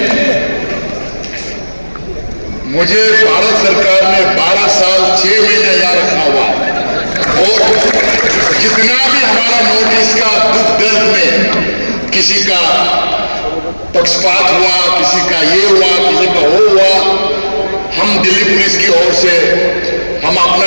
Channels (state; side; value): inverted; both; correlation -1.00